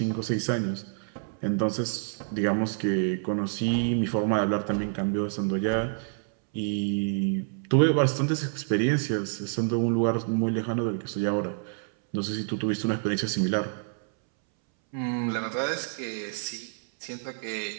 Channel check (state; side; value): silent; left; 59 dB below the other